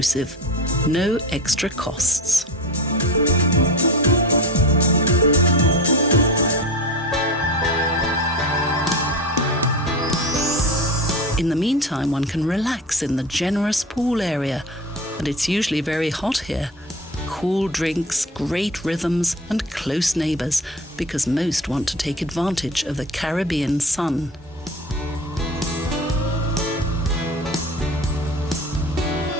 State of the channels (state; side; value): normal; both; correlation 0.31